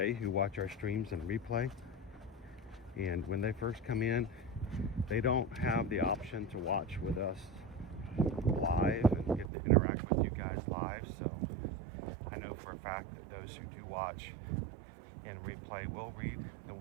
who watch our streams and replay, and when they first come in, they don't have the option to watch with us live and get to interact with you guys live. So I know for a fact that those who do watch in replay will read the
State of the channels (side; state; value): left; drops out; at 9.5 s